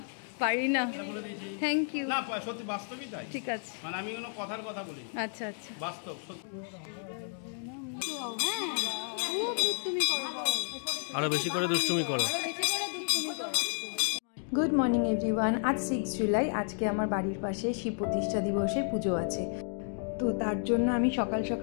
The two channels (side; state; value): right; silent; 57 dB below the other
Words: পারি না, থ্যাংক ইউ। না সত্যি বাস্তবই তাই, ঠিক আছে, মানে আমি কোনো কথার কথা বলি। আচ্ছা আচ্ছা বাস্তব সত্যি। আরো বেশি করে দুষ্টুমি করো। Good morning everyone. আজ 6 জুলাই, আজকে আমার বাড়ির পাশে শিব প্রতিষ্ঠা দিবসের পুজো আছে। তো তার জন্য আমি সকাল